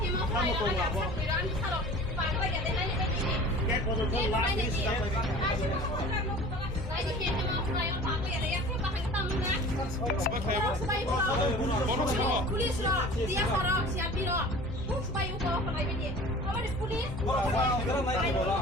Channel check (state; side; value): normal; both; correlation 0.42